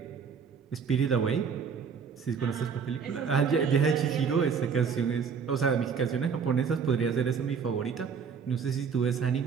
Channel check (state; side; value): quieter; left; 6.3 dB